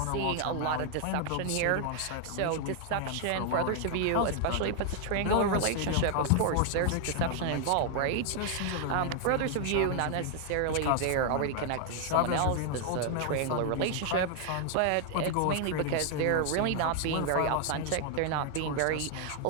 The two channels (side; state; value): both; different; correlation 0.00